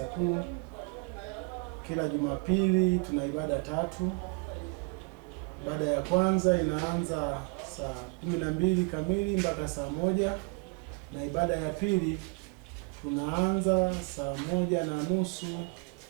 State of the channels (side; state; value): left; quieter; 33.2 dB